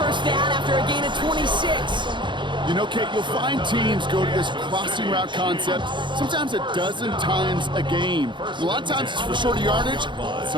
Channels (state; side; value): late; left; 0.23 ms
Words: down after a gain of 26. You know, Kate, you'll find teams go to this crossing route concept sometimes a dozen times a game. A lot of times it's for shorter yardage.